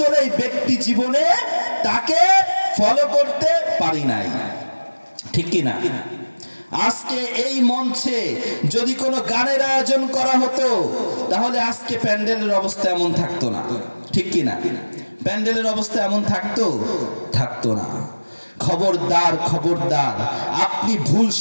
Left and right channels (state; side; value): inverted; both; correlation -1.00